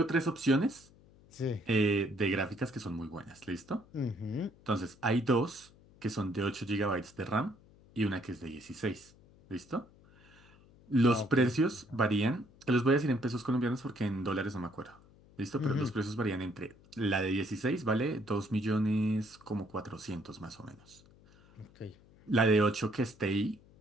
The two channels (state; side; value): noise; left; hum, 26 dB below the sound